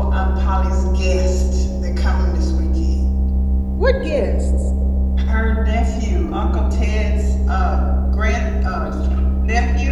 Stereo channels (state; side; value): identical; both; correlation 1.00